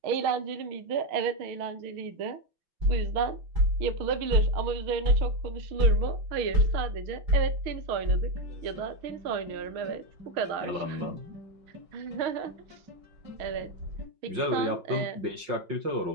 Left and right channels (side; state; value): left; late; 5.6 ms